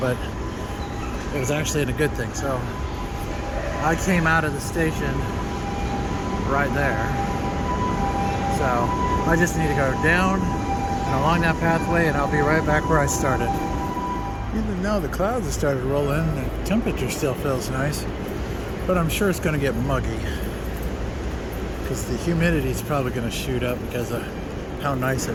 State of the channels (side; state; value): both; identical; correlation 1.00